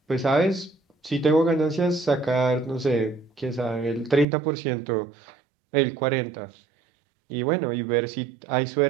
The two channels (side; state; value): left; drops out; at 4.2 s